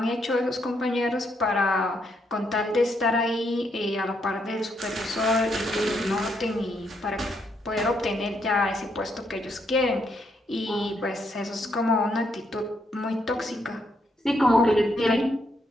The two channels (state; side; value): normal; both; correlation 0.76